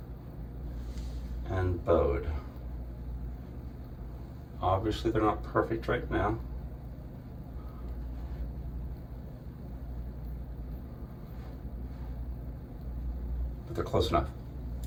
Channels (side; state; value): both; identical; correlation 1.00